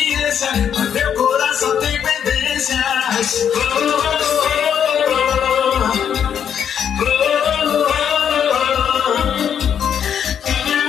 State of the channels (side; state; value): right; quieter; 8.4 dB